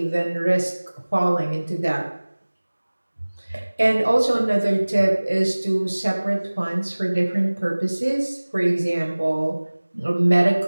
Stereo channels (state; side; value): inverted; both; correlation -1.00